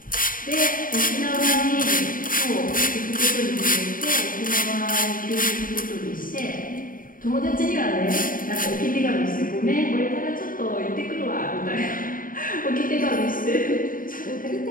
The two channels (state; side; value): late; right; 0.40 ms